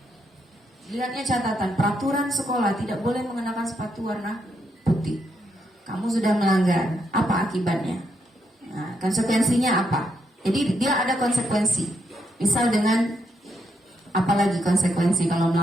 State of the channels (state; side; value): normal; both; correlation 0.79